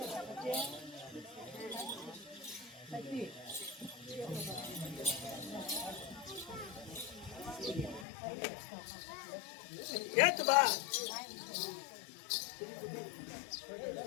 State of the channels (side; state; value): right; drops out; at 8.1 s